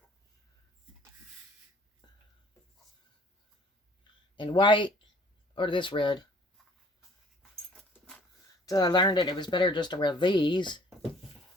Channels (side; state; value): both; normal; correlation 0.55